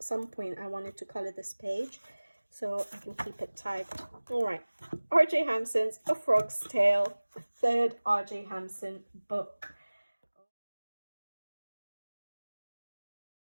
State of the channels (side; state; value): both; inverted; correlation -1.00